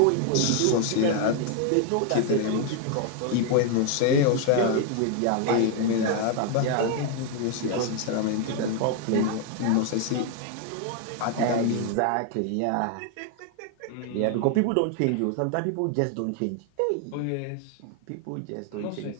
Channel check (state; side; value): different; both; correlation 0.00